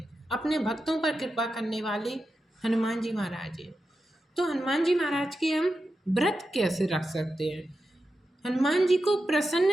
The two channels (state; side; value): normal; both; correlation 0.90